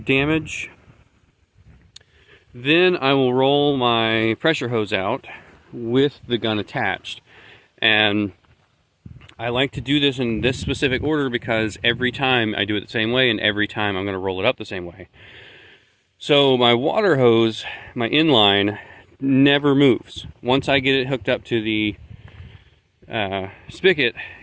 damage. Then I will roll my pressure hose out with the gun attached. And I like to do this in this specific order because every time I do it the same way, and every time I'm going to roll it up the same way. So my water hose, my inline, never moves. Once I get it hooked up to the spigot,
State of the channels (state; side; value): identical; both; correlation 1.00